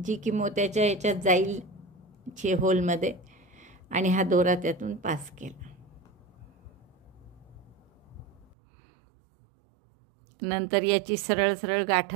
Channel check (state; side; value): drops out; left; at 8.6 s